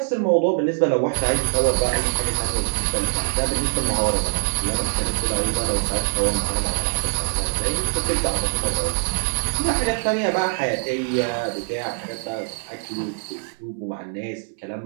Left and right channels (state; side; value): silent; left; 63 dB below the other